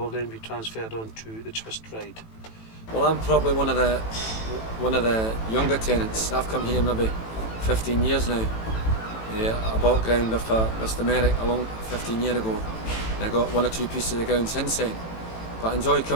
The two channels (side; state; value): right; late; 18 ms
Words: then be transferred on to the twist ride. Well, I'm probably one of the younger tenants. I've come here maybe 15 years now. I bought ground off Mr. Merrick along 15 years ago, and I got 1 or 2 pieces of ground since then. But I enjoy